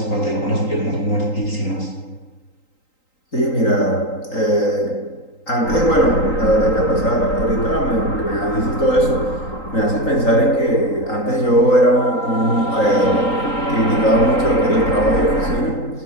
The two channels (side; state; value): right; late; 3.9 ms